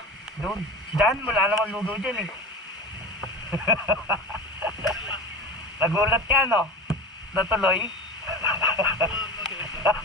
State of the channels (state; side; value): normal; both; correlation 0.31